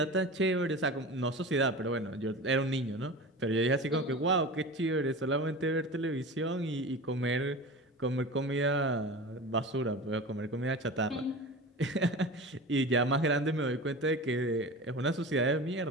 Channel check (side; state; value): both; normal; correlation 0.32